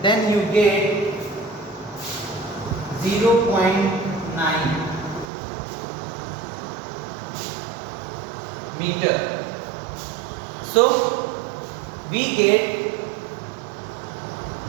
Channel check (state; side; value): drops out; left; at 5.3 s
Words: then you get 0.9 meter. So we get